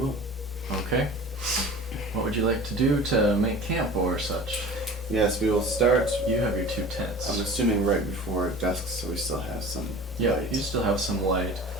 Okay. What would you like to do to make camp or such? Yes, we will start. You have your 2 tents. I'm assuming right before dusk, so we still have some Yeah, light. you still have some light.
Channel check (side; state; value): both; normal; correlation 0.40